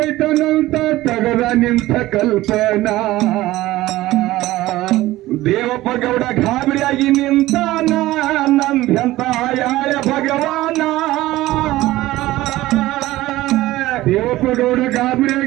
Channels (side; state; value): left; quieter; 16.9 dB